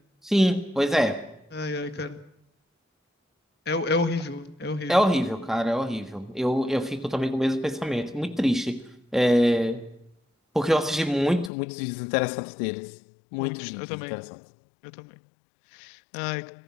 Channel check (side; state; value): right; drops out; at 11.5 s